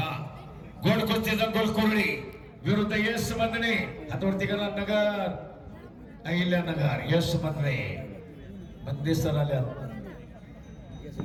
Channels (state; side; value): identical; both; correlation 1.00